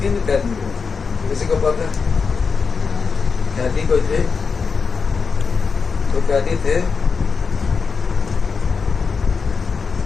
किन कैदी हो? किसी को पता है? कैदी कोई थे? तो कैदी थे?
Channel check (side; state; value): right; quieter; 5.2 dB